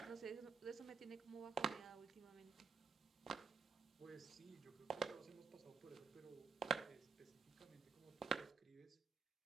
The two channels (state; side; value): quieter; left; 5.5 dB